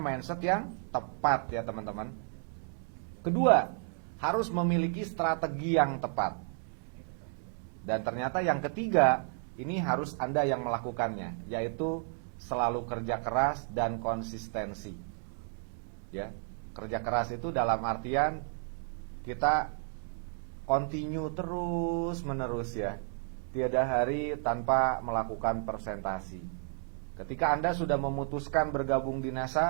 mindset yang tepat ya teman-teman. Kedua, harus memiliki strategi yang tepat. Dan ternyata yang ketiga, ini harus Anda yang melakukannya, yaitu selalu kerja keras dan konsistensi. Ya, kerja keras itu dalam artian kita continue terus menerus ya. Tiada hari tanpa melakukan presentasi. Ketika Anda sudah memutuskan bergabung di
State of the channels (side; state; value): left; silent; 56 dB below the other